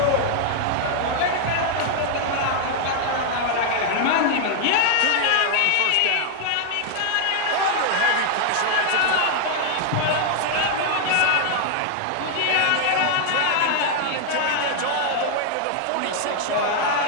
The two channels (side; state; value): both; different; correlation 0.00